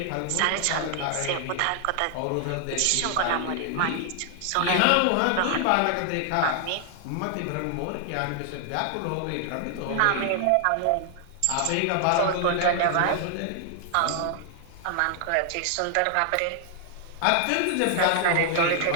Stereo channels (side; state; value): both; different; correlation 0.00